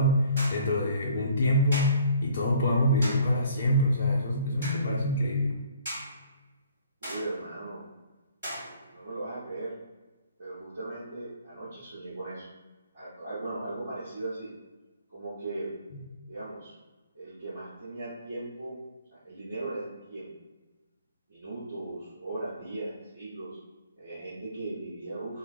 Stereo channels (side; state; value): both; inverted; correlation -0.56